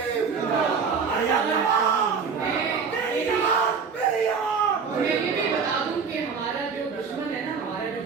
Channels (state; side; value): quieter; left; 5.7 dB